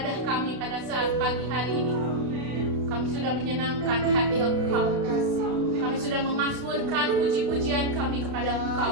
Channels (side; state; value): left; late; 31 ms